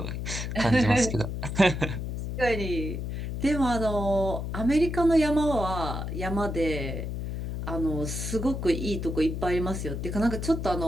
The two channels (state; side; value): noise; left; hum, 4 dB below the sound